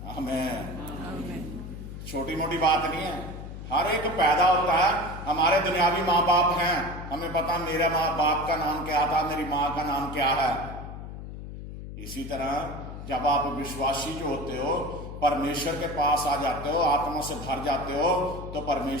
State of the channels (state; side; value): noise; left; hum, 10 dB below the sound